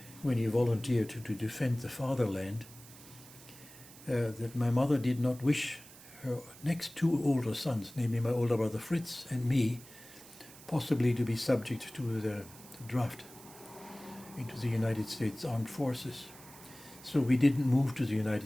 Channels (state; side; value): noise; right; hiss, 19 dB below the sound